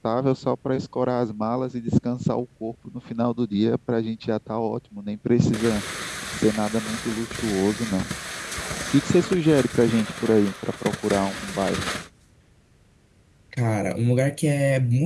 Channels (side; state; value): both; identical; correlation 1.00